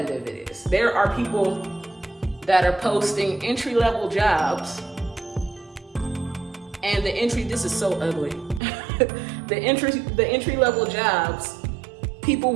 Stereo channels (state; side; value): drops out; left; at 8.6 s